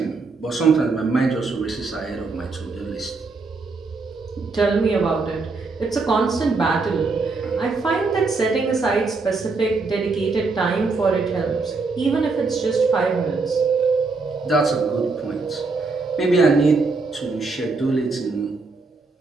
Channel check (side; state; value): left; quieter; 4.0 dB